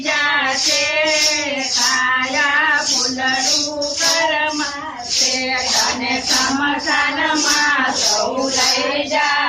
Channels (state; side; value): identical; both; correlation 1.00